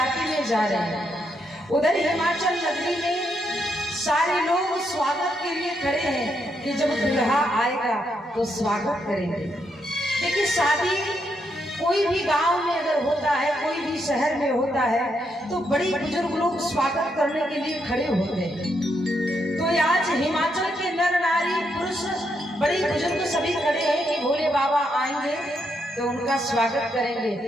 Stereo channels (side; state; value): both; normal; correlation 0.79